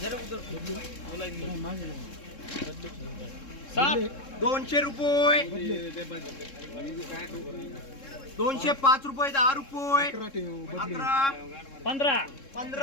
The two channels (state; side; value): late; right; 3.7 ms